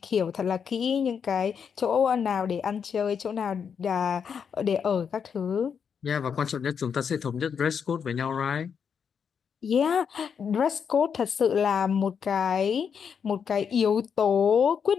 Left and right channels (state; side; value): quieter; right; 6.9 dB